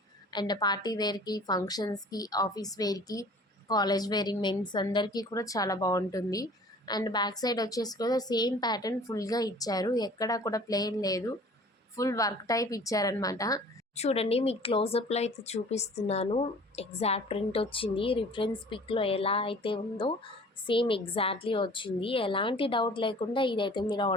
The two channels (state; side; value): normal; both; correlation 0.48